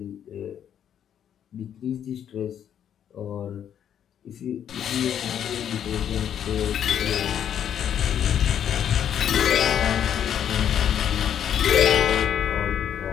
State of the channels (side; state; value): right; quieter; 9.4 dB